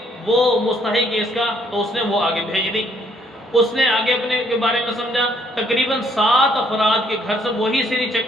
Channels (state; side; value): normal; both; correlation 0.66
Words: وہ مستحق ہے اس کا، تو اس نے وہ آگے بھیج دی۔ اس نے آگے اپنے کے بارے میں سمجھا، تقریباً 7 افراد کے گھر سے وہی سری